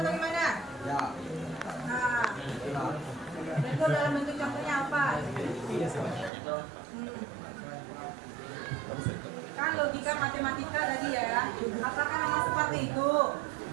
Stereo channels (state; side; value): drops out; left; at 6.3 s